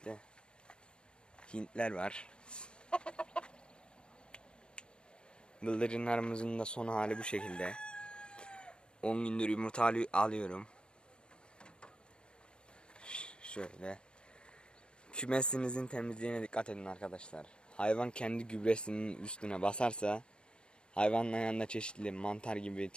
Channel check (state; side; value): late; right; 0.052 ms